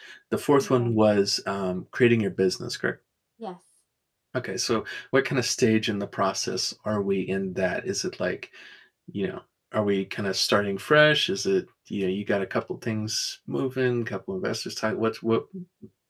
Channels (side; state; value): both; identical; correlation 1.00